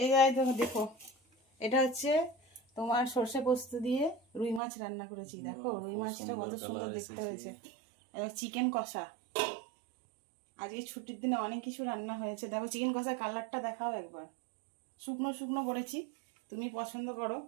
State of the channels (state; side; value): drops out; left; at 4.6 s